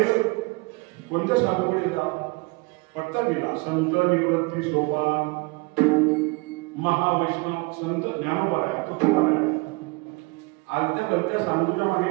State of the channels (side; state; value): left; quieter; 27.7 dB